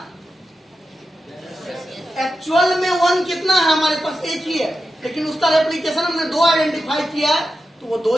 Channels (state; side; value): normal; both; correlation 0.90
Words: एक्चुअल में 1 कितना है हमारे पास, 1 ही है, लेकिन उसका रेप्लिकेशन हमने 2 आइडेंटिफाई किया है, तो वो 2